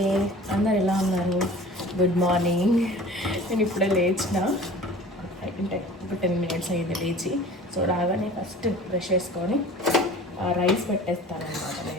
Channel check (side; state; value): both; normal; correlation 0.43